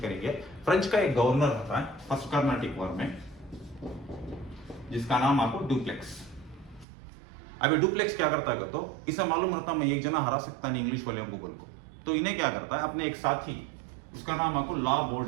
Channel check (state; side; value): drops out; left; at 6.9 s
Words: करेंगे। फ्रेंच का एक गवर्नर रहता है फर्स्ट कार्नाटिक वॉर में, जिसका नाम आपको डुप्लेक्स। अभी डुप्लेक्स क्या करता है तो इसे मालूम रहता मैं एक जना हरा सकता नहीं इंग्लिश वाले को बोल को, तो इन्हें क्या करता है अपने एक साथी, उसका नाम आपको ला